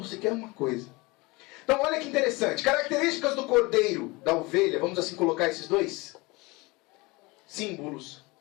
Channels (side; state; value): right; quieter; 24.1 dB